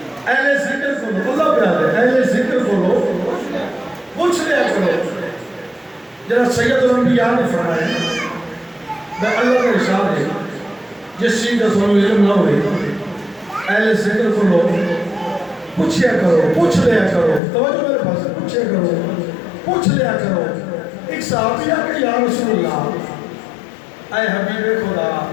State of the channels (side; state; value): right; drops out; at 17.4 s